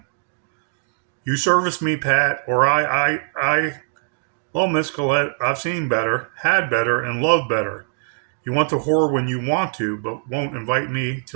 You service me, Pat, or Well, Miss Colette, I've seen better, had better, and loved better. You want to whore when you want to, but won't invite me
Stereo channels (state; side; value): silent; left; digital silence